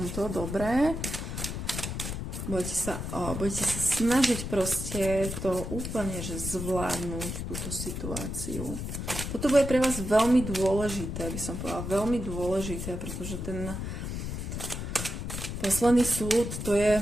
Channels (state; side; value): noise; left; rumble, 5 dB below the sound